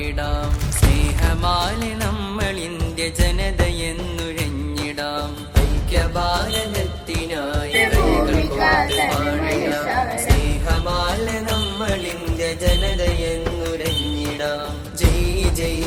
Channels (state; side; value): identical; both; correlation 1.00